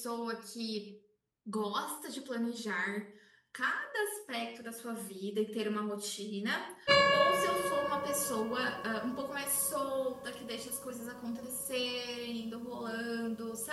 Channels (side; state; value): both; identical; correlation 1.00